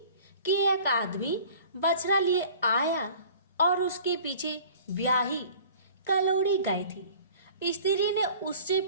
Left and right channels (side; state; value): both; inverted; correlation -0.46